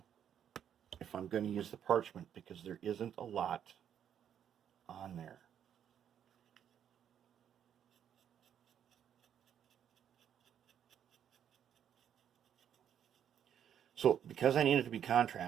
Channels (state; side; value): quieter; left; 9.2 dB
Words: if I'm going to use the parchment, because there isn't a lot on there. So because I need it to be